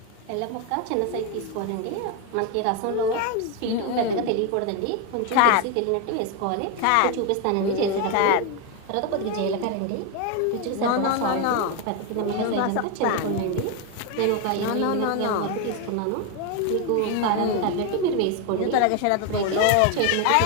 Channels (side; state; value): both; different; correlation 0.01